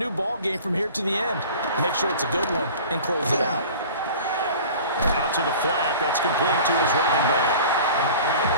ball game from here to the end. Make sure it's a good one and close it out. Out to the flat. That's complete to his running back.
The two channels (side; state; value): both; inverted; correlation -0.42